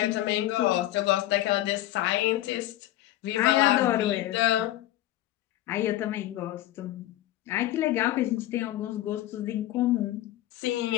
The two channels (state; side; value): quieter; right; 14.9 dB